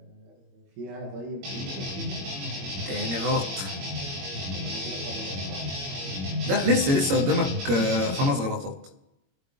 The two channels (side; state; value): left; late; 22 ms